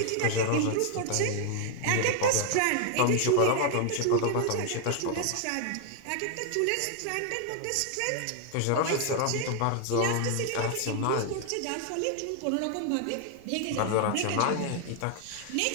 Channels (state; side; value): different; both; correlation 0.00